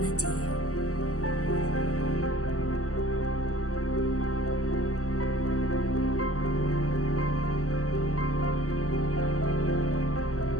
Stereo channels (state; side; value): late; right; 0.65 ms